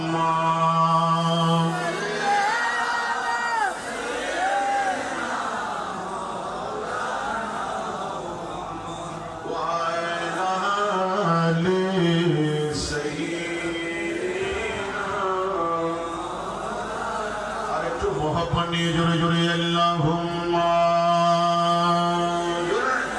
জোরে জোরে আল্লাহুম্মা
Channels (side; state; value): both; identical; correlation 1.00